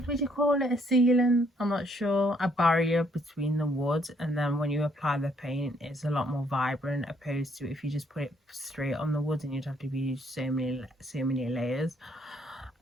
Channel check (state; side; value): normal; both; correlation 0.68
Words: would you call it, a sealant? I'm not sure. A barrier between the wood, and then when you apply the paint, it's a lot more vibrant, opposed to if you just put it straight on the wood and you'd have to use so many layers.